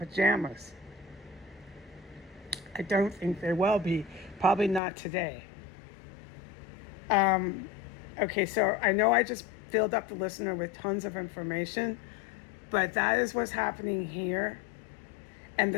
I don't think they will be. Probably not today. Okay, so I know I just filled up the listener with tons of information, But that is what's happening here. And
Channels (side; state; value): right; drops out; at 4.8 s